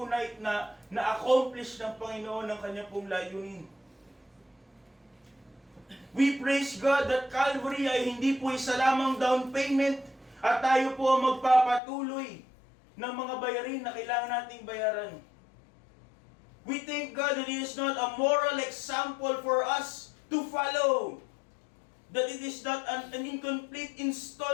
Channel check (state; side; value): drops out; right; at 11.8 s